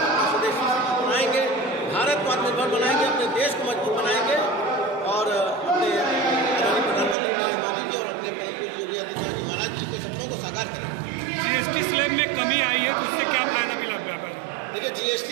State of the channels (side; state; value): left; drops out; at 7.2 s